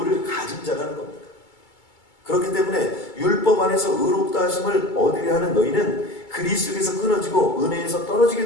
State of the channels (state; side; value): late; right; 2.3 ms